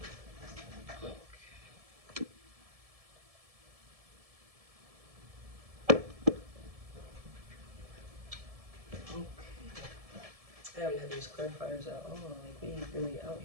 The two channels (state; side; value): late; left; 1.7 ms